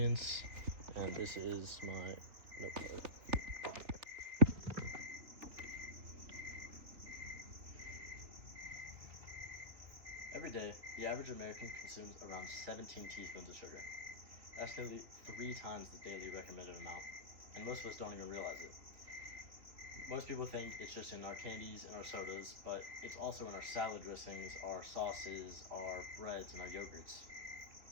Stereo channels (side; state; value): left; late; 3.3 ms